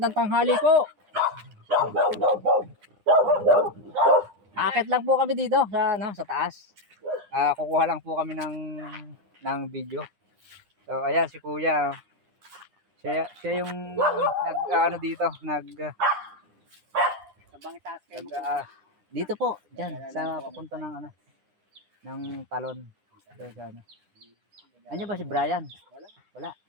tanghali po. Akit lang po kami dito sa taas. Kukuha lang po kami ng video. So ayan si kuya. Siya yung dito, dito po, diyan sa papunta ng talon. Ano ba si Brian? Wala.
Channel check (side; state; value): left; late; 9.9 ms